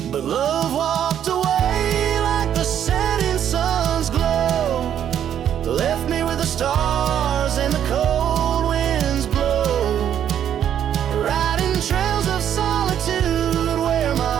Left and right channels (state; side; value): quieter; left; 9.7 dB